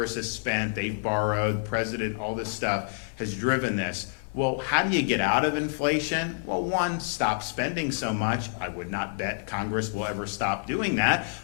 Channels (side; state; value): right; silent; 57 dB below the other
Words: has spent, they've borrowed, president, all this stuff has driven this. Well, how do you get out of inflation? Well, one, stop spending so much. I would not bet Congress will ever stop doing that.